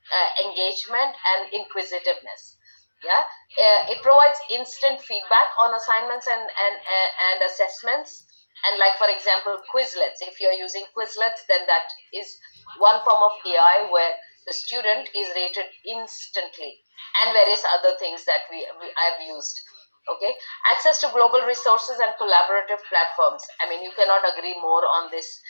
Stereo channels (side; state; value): both; inverted; correlation -1.00